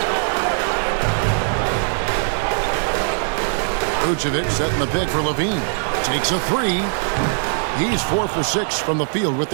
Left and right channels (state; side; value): silent; left; digital silence